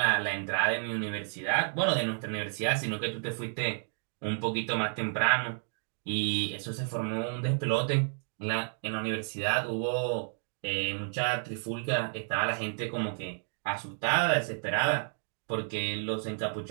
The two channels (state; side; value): silent; left; digital silence